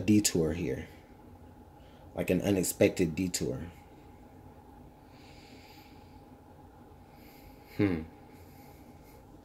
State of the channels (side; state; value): both; identical; correlation 1.00